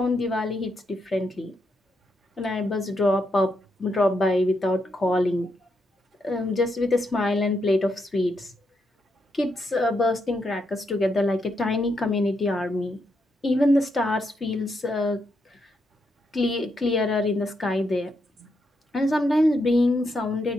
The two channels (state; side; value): normal; both; correlation 0.80